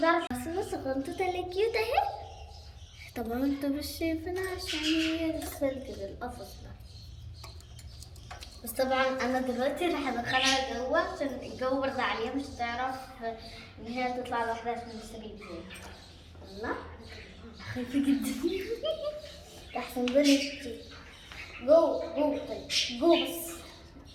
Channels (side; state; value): both; identical; correlation 1.00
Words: بس الصغنطوطة اللي كيوت اهي. طبعا انتوا مش شايفينها عشان هي لسه كده القفص ده. بس طبعا انا دلوقتي راح ادخلها جوه عشان الجو برد عليها، مش هتعرف ان هي تطلع لوحدها عشان السرير زي الله. خايفه جدا. احسن بنتي جوه جوه. طيب جوه بس.